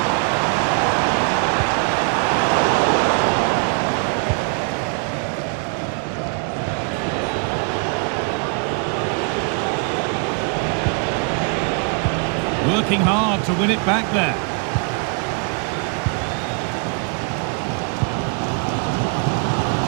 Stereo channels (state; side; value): quieter; left; 37.5 dB